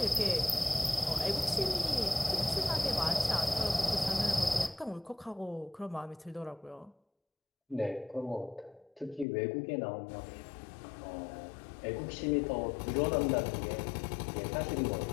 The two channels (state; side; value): drops out; right; at 9.2 s